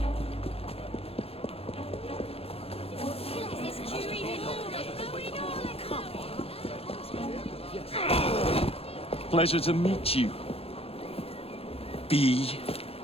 Pleasure to meet you. B.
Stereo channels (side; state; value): right; late; 0.28 ms